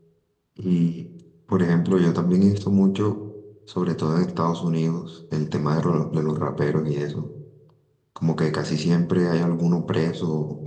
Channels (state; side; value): identical; both; correlation 1.00